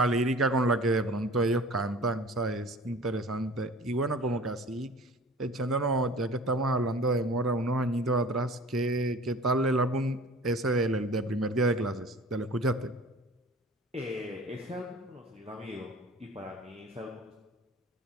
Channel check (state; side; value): normal; both; correlation 0.43